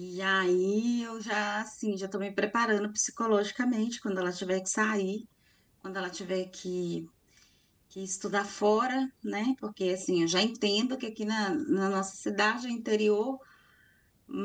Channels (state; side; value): identical; both; correlation 1.00